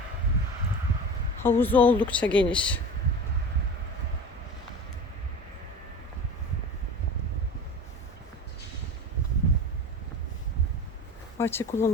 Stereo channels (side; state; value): both; normal; correlation 0.33